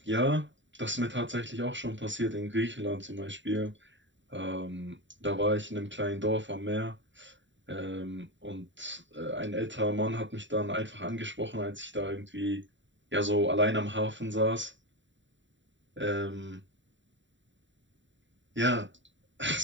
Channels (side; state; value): left; late; 0.54 ms